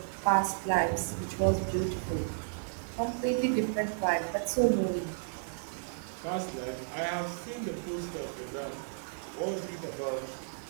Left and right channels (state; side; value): silent; left; digital silence